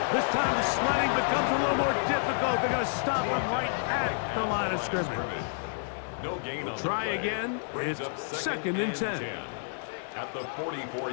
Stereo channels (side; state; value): right; silent; digital silence